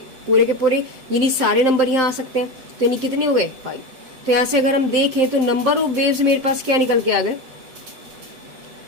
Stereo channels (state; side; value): late; left; 7.7 ms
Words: पूरे के पूरे, यानी सारे नंबर यहाँ आ सकते हैं। तो यानी कितने हो गए, 5। तो यहाँ से अगर हम देखें तो नंबर ऑफ वेव्स मेरे पास क्या निकल के आ गए,